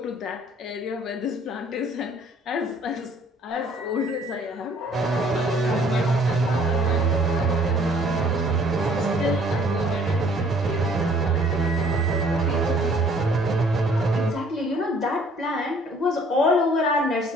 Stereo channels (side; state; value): both; normal; correlation 0.58